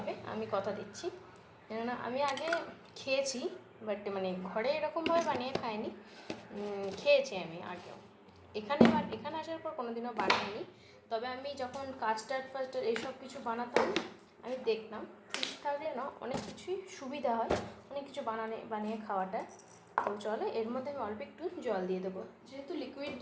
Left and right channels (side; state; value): both; identical; correlation 1.00